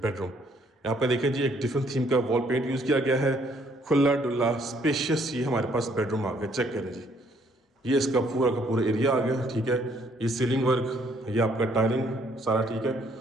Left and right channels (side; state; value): both; normal; correlation 0.66